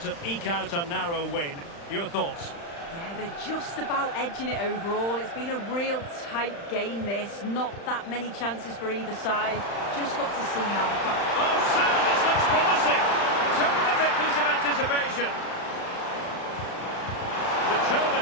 to eke out a narrow win. Your thoughts? Yeah, they're just about edging it overall. It's been a real tight game, this. Not that many chances for either side. Just got to see how the fact... Oh, sir, this looks promising. Terrific piece of anticipation.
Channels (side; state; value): right; late; 35 ms